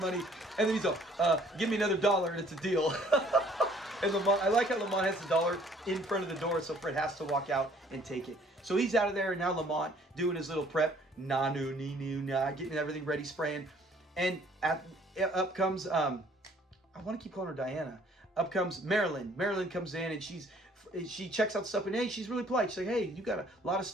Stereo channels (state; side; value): normal; both; correlation 0.58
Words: and then he's all, give me another $1 and it's a deal. And Lamont, I like how Lamont has the $1 in front of the door, so Fred has to walk out and take it. So he's out of there, and now Lamont doing his little prep, getting everything ready, spraying. And up comes, I want to keep calling her Diana. Up comes Marilyn. Marilyn comes in, and she checks out stuff, and hey, she's really polite. She's like, hey, you got a lot of